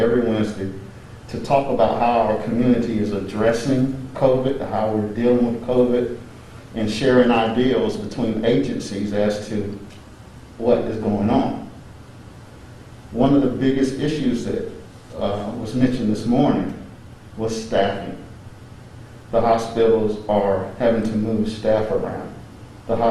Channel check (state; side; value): identical; both; correlation 1.00